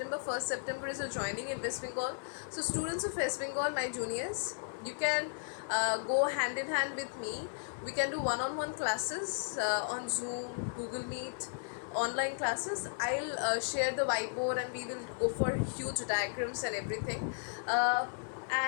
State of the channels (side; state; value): right; silent; 54 dB below the other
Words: 1st September is a joining in West Bengal. So students of West Bengal, my juniors, you can go hand in hand with me We can do one-on-one classes on Zoom, Google Meet, online classes. I'll share the whiteboard and we will go for huge diagrams and everything.